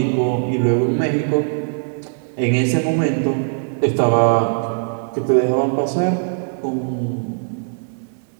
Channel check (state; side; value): silent; left; digital silence